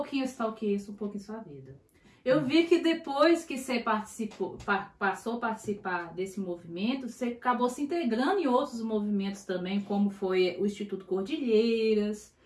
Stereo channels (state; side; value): identical; both; correlation 1.00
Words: stalkeei isso um pouco em sua vida. Eu vi que depois que você passou a participar desse movimento, você acabou se integrando em outros movimentos também, como foi o Instituto Cordilheiras.